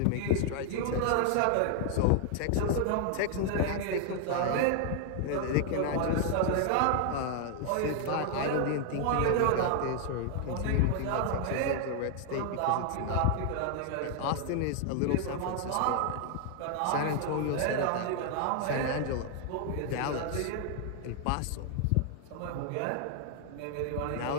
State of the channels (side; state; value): both; different; correlation 0.00